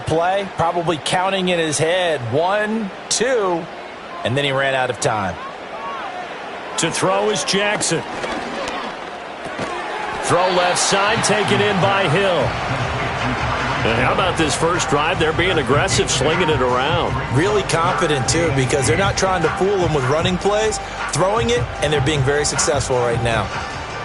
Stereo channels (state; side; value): identical; both; correlation 1.00